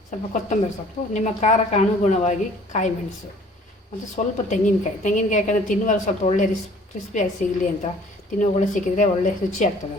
ಸ್ವಲ್ಪ ಕೊತ್ತಂಬರಿ ಸೊಪ್ಪು, ನಿಮ್ಮ ಖಾರಕ್ಕೆ ಅನುಗುಣವಾಗಿ ಕಾಯಿ ಮೆಣಸು ಮತ್ತು ಸ್ವಲ್ಪ ತೆಂಗಿನಕಾಯಿ ಯಾಕಂದರೆ ತಿನ್ನುವಾಗ ಸ್ವಲ್ಪ ಒಳ್ಳೆ ಕ್ರಿಸ್ಪಿಯಾಗಿ ಸಿಗಲಿ ಅಂತ, ತಿನ್ನುವಾಗ ಸಿಕ್ಕಿದರೆ ಒಳ್ಳೆ ರುಚಿ ಆಗ್ತದೆ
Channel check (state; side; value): normal; both; correlation 0.53